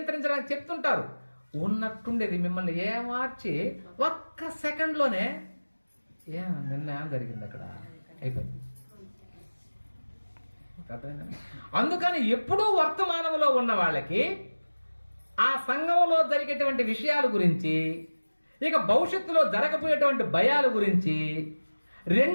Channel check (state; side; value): inverted; both; correlation -1.00